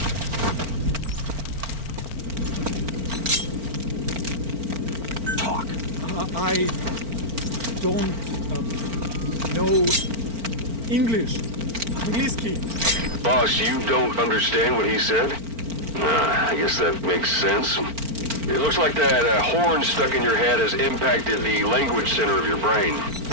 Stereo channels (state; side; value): late; left; 4.4 ms